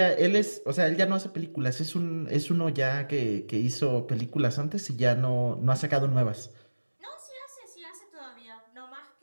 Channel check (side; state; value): both; inverted; correlation -1.00